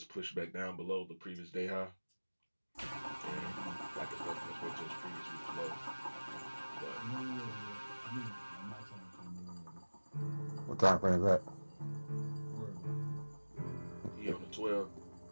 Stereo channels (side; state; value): both; inverted; correlation -1.00